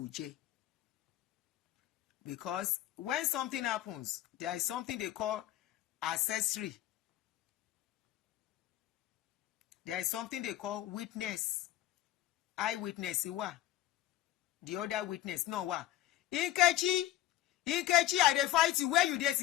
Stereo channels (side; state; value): right; quieter; 14.4 dB